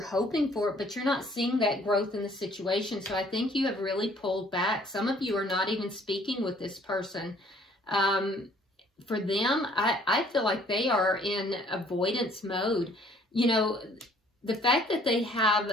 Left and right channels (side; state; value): both; normal; correlation 0.59